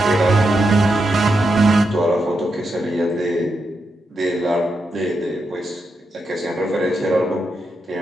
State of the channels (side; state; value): both; normal; correlation 0.85